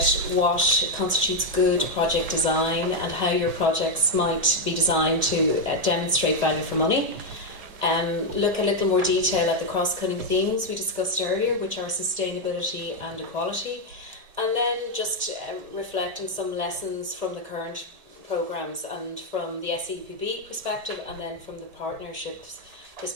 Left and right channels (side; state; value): left; late; 1.7 ms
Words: what constitutes good project design and how your projects might be designed to demonstrate value for money. Look a little more detail at the cross-cutting themes we discussed earlier, which are sustainability and equality, and then just reflect on some lessons from the current programmes and from the SEUPB perspective, and then from the partnerships